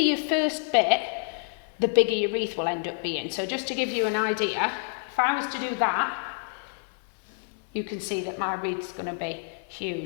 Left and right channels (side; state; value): right; silent; 60 dB below the other